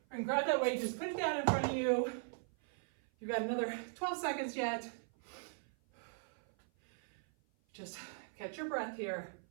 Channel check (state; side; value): silent; left; 52 dB below the other